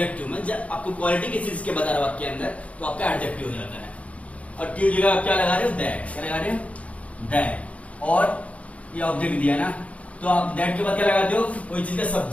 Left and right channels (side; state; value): right; late; 0.065 ms